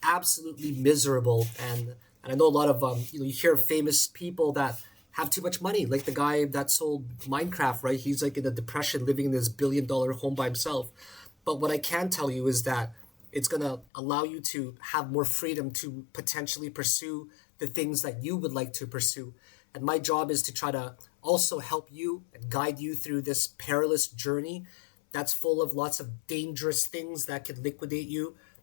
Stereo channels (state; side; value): drops out; right; at 13.9 s